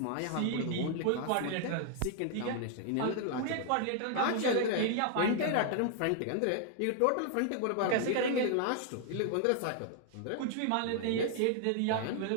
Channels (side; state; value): both; different; correlation 0.00